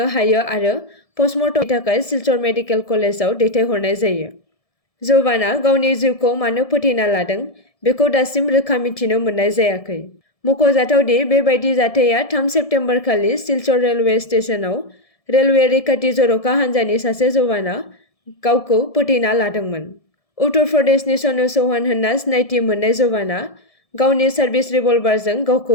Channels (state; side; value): late; right; 1.7 ms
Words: हायो आरो पस्टमर्टमनि थाखाय सिलचर मेडिकेल कलेजाव दैथायहरनाय जायो। जवाना गावनि जिउखौ मानो फोथैना लादों बेखौ दासिम रोखा मिथिनो मोननाय जायाखै। मख'जाथावदि बेबायदि जाथाया 3 सेप्तेम्बर खालि सिलचर रेलवे स्टेशनाव रेलवे रैखाथि जर'खा हान्जानि सासे जवाना गावखौ फोथैना लादोंमोन। उत्तर प्रदेशनि सनु चौहान होनना सिनायथि मोननाय जवाना गावनि सार्भिस रिभलभारजों